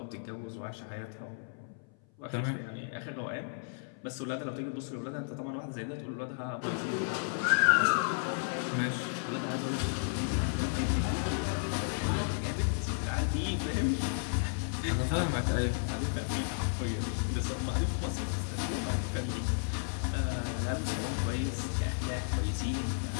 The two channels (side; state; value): right; silent; 56 dB below the other